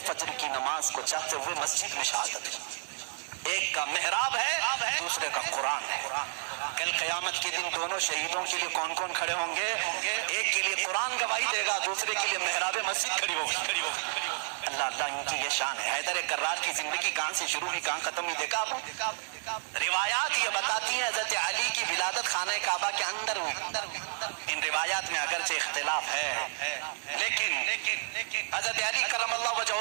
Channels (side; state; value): left; silent; 57 dB below the other